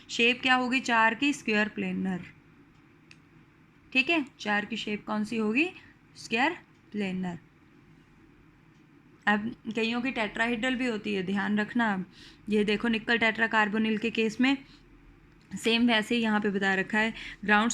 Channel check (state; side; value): identical; both; correlation 1.00